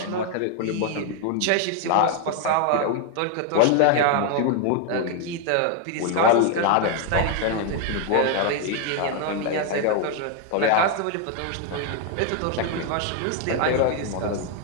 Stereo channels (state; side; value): different; both; correlation 0.01